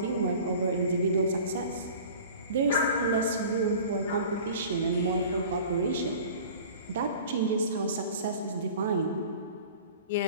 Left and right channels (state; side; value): inverted; both; correlation -0.42